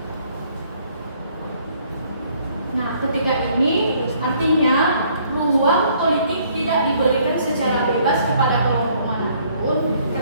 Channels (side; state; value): both; inverted; correlation -0.63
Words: Nah, ketika ini artinya ruang politik tidak diberikan secara bebas kepada kelompok manapun,